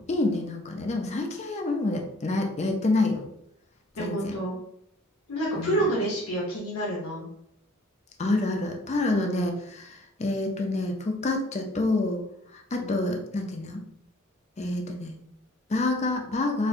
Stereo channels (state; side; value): normal; both; correlation 0.56